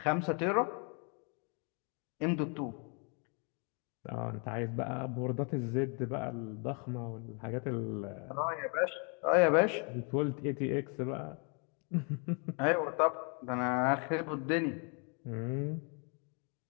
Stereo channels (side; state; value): right; quieter; 36.9 dB